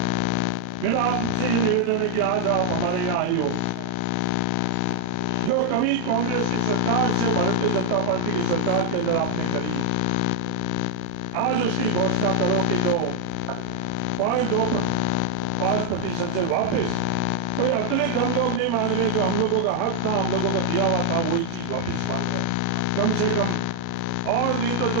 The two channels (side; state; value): both; different; correlation 0.00